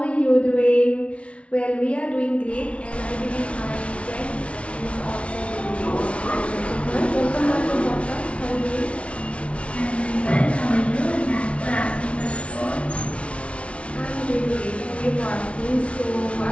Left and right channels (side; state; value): right; late; 0.062 ms